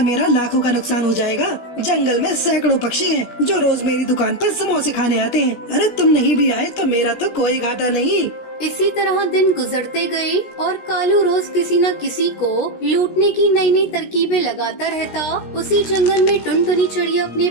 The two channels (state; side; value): late; right; 17 ms